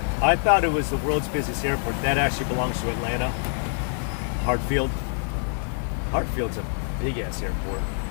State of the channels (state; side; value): silent; right; 59 dB below the other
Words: I thought it was the world's busiest airport. That actually belongs to Atlanta. Hartfield. Hartfield's a big-ass airport.